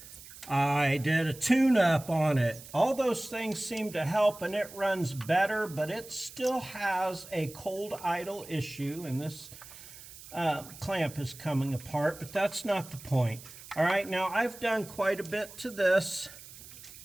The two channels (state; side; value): noise; right; hiss, 17 dB below the sound